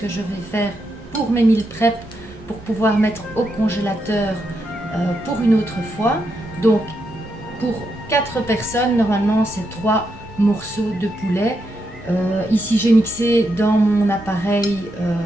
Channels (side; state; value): both; normal; correlation 0.83